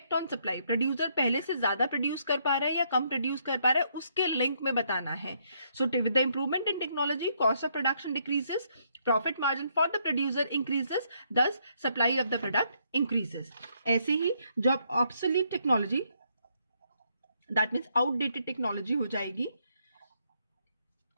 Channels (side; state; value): both; inverted; correlation -0.73